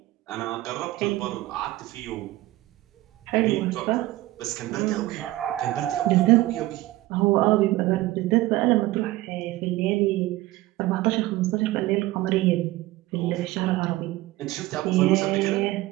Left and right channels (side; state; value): left; quieter; 17.6 dB